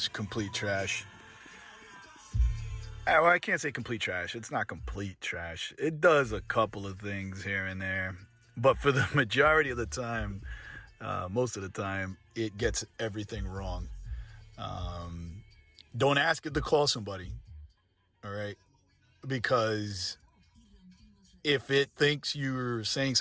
complete trash. Well, I can't say complete trash. It's not complete trash. It does a couple of things here and there. But for the majority of the time, most of the time, it gets everything wrong. Don't ask it to call somebody, all right? Because if it thinks you're saying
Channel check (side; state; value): both; identical; correlation 1.00